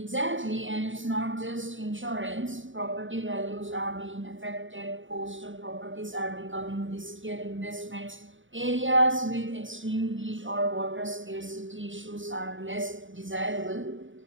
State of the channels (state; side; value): late; left; 0.56 ms